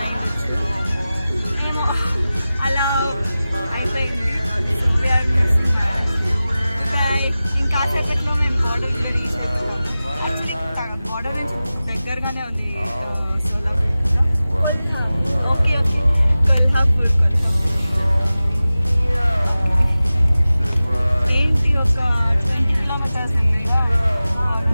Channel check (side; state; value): both; inverted; correlation -0.96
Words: అయ్యవచ్చు. ఏమో అలా అయిపోయింది. ఇంకాసేపట్లో మేము బార్డర్ యాక్చువల్లీ బార్డర్ నుంచి దగ్గరగానే ఉంది సోలాపూర్. ఓకే కొల్హాపూర్. ఏంటి ఒక 20 కిలోమీటర్స్